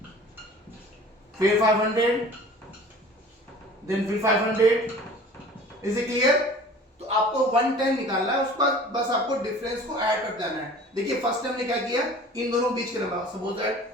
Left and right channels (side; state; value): both; normal; correlation 0.45